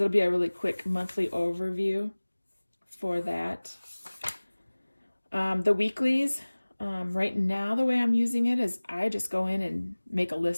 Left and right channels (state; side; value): inverted; both; correlation -1.00